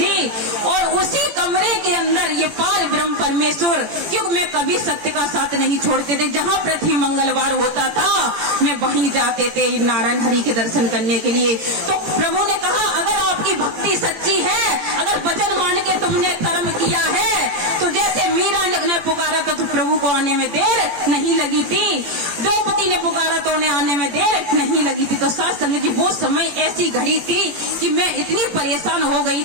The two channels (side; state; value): left; late; 17 ms